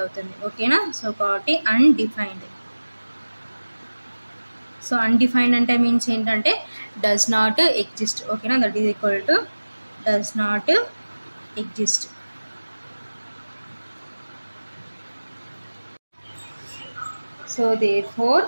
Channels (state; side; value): inverted; both; correlation -1.00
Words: అవుతుంది, ఓకేనా. సో కాబట్టి అన్డిఫైన్డ్. సో అన్డిఫైన్డ్ అంటే మీన్స్ ఏంటంటే డస్ నాట్ ఎగ్జిస్ట్, ఓకేనా. That is equal to does not exist. So therefore